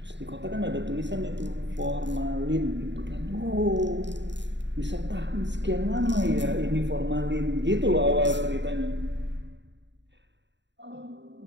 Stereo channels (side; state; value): left; late; 0.52 ms